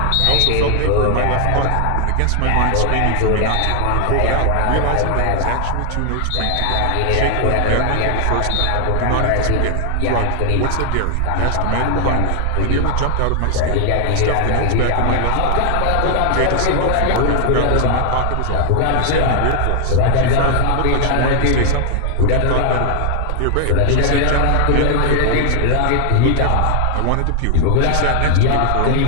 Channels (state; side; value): different; both; correlation 0.00